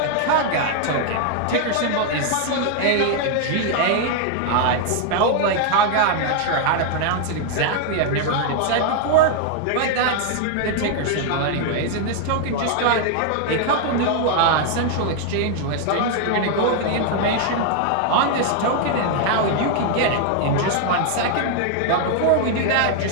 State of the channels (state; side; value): different; both; correlation 0.00